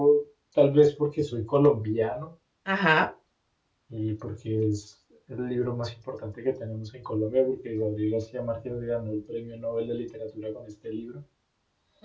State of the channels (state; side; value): identical; both; correlation 1.00